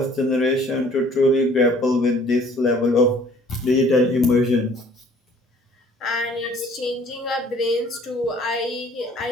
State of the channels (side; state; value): both; normal; correlation 0.55